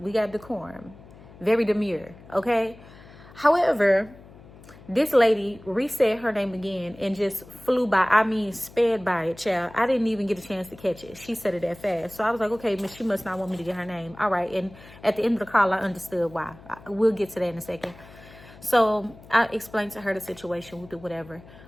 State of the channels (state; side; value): noise; left; hum, 21 dB below the sound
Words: got decorum. Very demure, okay? However, this lady resaid her name again and just flew by. I mean, sped by it, child. I didn't even get a chance to catch it. She said it that fast. So I was like, okay, she must not want me to get her name. All right. And at the end of the call, I understood why. We'll get to that in a second. So I explained to her the situation with it, whatever.